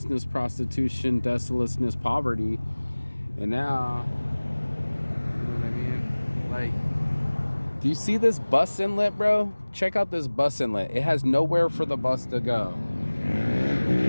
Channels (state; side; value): inverted; both; correlation -1.00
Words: prostitution, desolateness, poverty. And now, you know what I mean? Like, do you see this bus inlet, bro? Check out this bus inlet. It has nowhere for the bus to go.